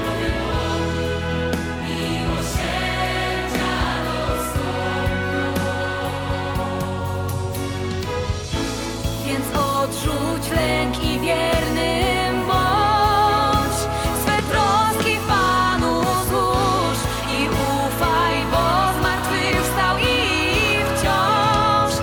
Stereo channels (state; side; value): identical; both; correlation 1.00